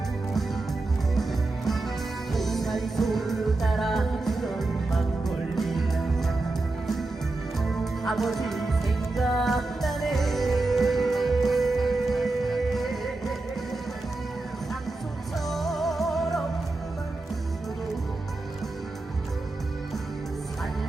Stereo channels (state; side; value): quieter; left; 3.2 dB